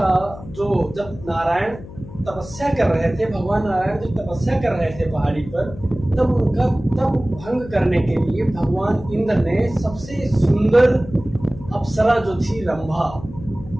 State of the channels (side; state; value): left; noise; hum, 15 dB below the sound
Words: जो जब नारायण तपस्या कर रहे थे, भगवान नारायण जब तपस्या कर रहे थे पहाड़ी पर, तब उनका तप भंग करने के लिए भगवान इंद्र ने सबसे सुंदर अप्सरा जो थी रंभा,